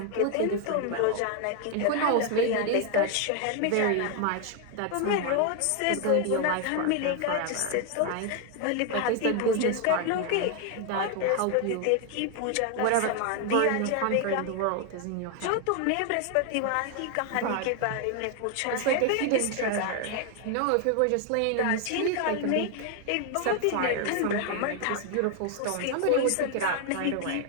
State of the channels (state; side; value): different; both; correlation 0.01